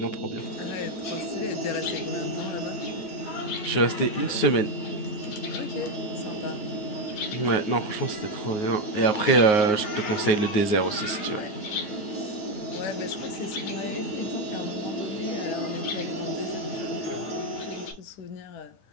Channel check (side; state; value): right; late; 9.5 ms